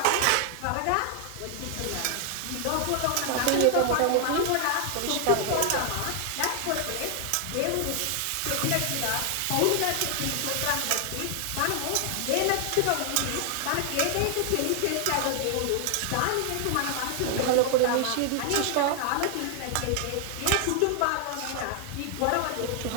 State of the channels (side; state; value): both; different; correlation 0.00